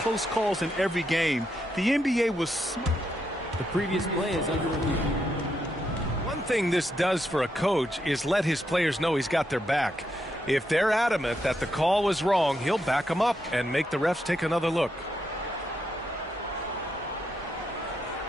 calls in every game, the NBA was... The previous play is under review. One thing this does for a coach is let his players know he's got their back. If they're adamant that the call was wrong, he'll back them up and make the refs take another look.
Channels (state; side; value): normal; both; correlation 0.81